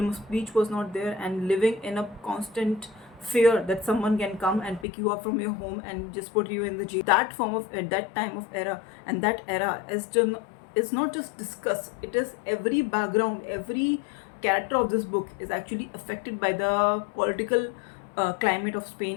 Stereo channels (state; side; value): drops out; right; at 4.9 s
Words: of speech was not there, and living in a constant fear that someone can come and pick you up from your home and just put you in the jail. That form of at that time of era, and that era is just is not just discussed, it is every background, every character of this book is actually affected by the political climate of